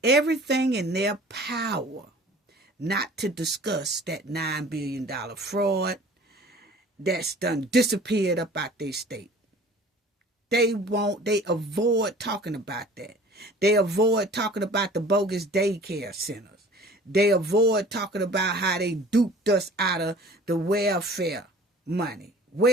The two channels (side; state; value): both; normal; correlation 0.47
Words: everything in their power not to discuss that $9 billion fraud that's done disappeared up out their state? They avoid talking about that. They avoid talking about the bogus daycare centers. They avoid talking about how they duped us out of the welfare money,